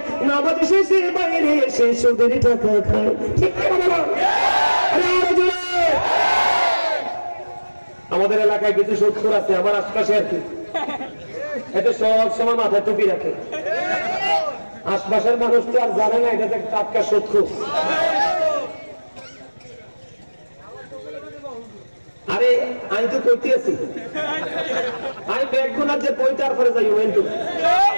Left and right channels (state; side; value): inverted; both; correlation -1.00